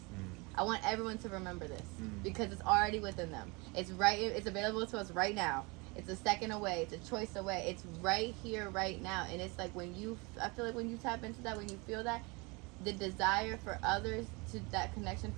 I want everyone to remember this because it's already within them. It's right. It's available to us right now. It's a second away. It's a choice away. It's right here, right now. And it's like I feel like when you tap into that, when you feel that, the desire for others, that connection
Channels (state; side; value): quieter; left; 27.6 dB